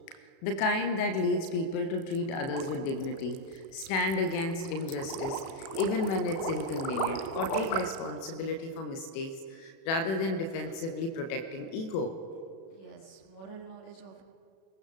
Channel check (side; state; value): right; late; 37 ms